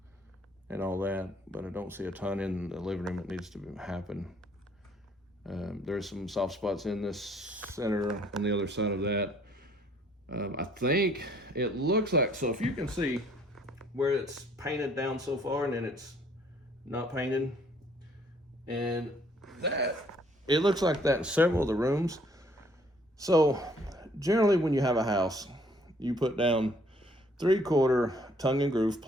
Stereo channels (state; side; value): normal; both; correlation 0.62